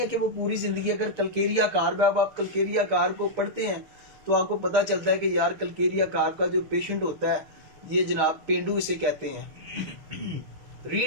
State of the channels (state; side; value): late; left; 6.5 ms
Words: कि वो पूरी जिंदगी, अगर कलकेरिया कार, आप कलकेरिया कार को पढ़ते हैं तो आपको पता चलता है कि यार कलकेरिया कार का जो पेशेंट होता है ये जनाब पेंडू इसे कहते हैं,